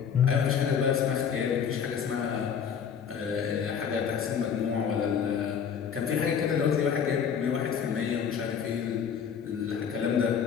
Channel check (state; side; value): quieter; right; 7.4 dB